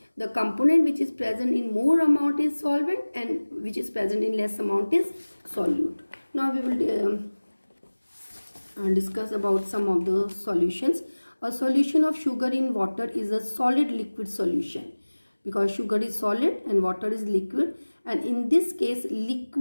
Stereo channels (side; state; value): both; inverted; correlation -1.00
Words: the component which is present in more amount is solvent and which is present in less amount is solute. Now we will discuss about some of the solutions. A solution of sugar in water is a solid liquid solution, because sugar is solid and water is liquid, and in this case